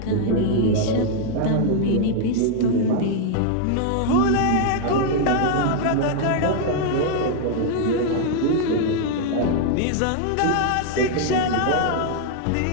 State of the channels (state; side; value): different; both; correlation 0.00